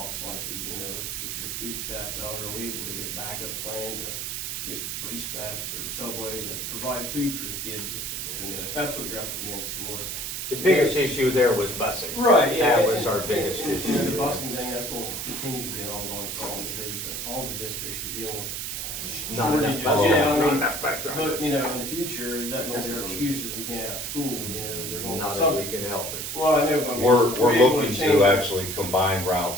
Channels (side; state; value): right; noise; hiss, 4 dB below the sound